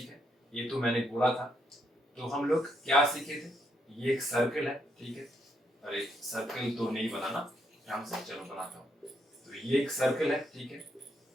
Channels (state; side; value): normal; both; correlation 0.76